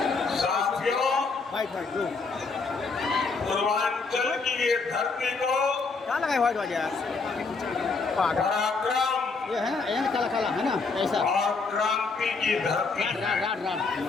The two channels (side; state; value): right; quieter; 4.3 dB